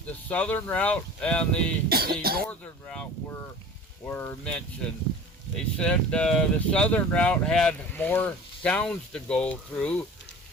the southern route and the northern route, were mentioned. They said the southern route had more towns to go through.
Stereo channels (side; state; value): both; normal; correlation 0.40